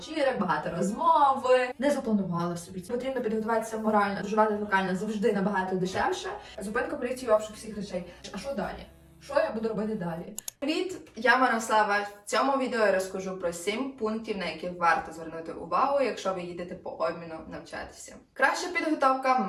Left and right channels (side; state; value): both; identical; correlation 1.00